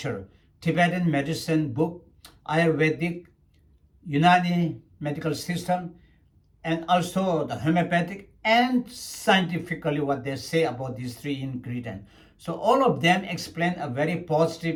Tibetan medicine book, Ayurvedic, Unani medical system, and also the homeopathic, and scientifically what they say about these 3 ingredients. So all of them explain a very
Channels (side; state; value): both; identical; correlation 1.00